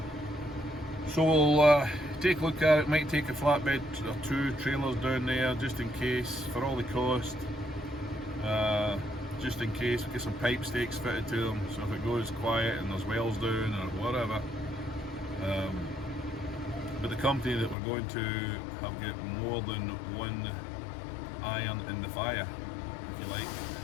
So we'll take a look at it. Might take a flatbed or two trailers down there just in case, for all the cost. Just in case, we'll get some pipe stakes fitted to them, so if it goes quiet and there's wells down or whatever. But the company that we're going to have got more than one iron in the fire, if you like.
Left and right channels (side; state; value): right; drops out; at 17.8 s